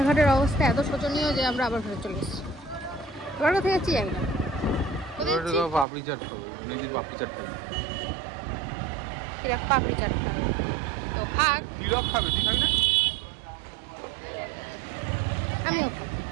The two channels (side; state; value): left; drops out; at 5.9 s